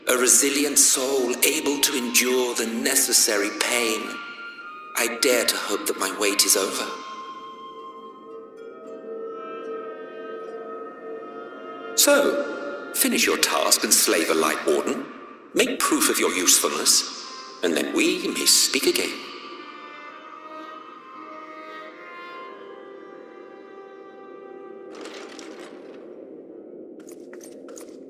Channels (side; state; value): both; identical; correlation 1.00